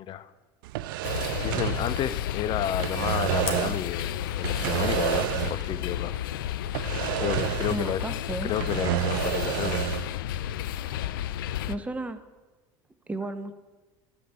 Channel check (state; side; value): normal; both; correlation 0.00